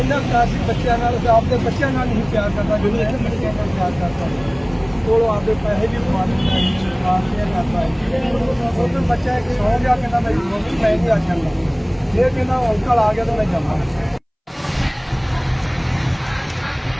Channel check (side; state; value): both; identical; correlation 1.00